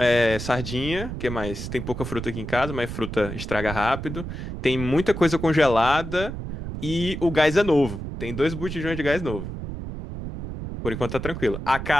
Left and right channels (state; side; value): noise; right; rumble, 7 dB below the sound